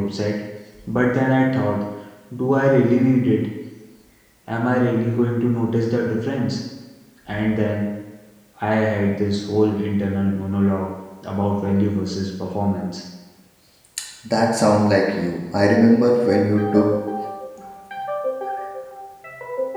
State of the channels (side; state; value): both; identical; correlation 1.00